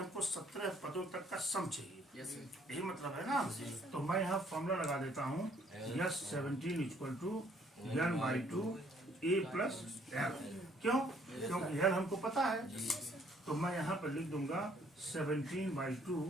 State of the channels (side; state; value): both; normal; correlation 0.63